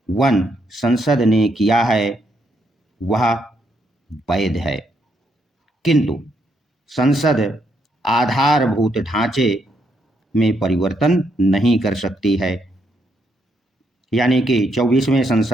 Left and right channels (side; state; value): both; normal; correlation 0.76